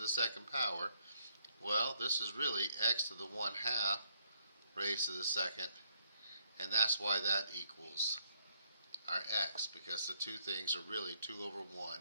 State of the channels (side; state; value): both; inverted; correlation -0.68